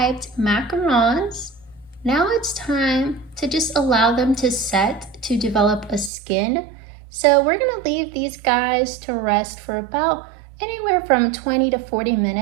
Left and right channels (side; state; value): left; drops out; at 6.1 s